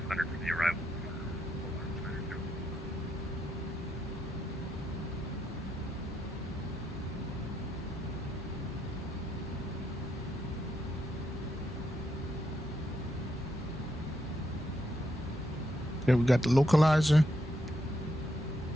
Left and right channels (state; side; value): normal; both; correlation 0.79